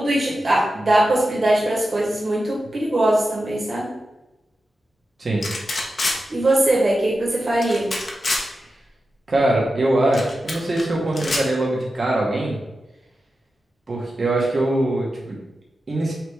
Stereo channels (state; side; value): normal; both; correlation 0.91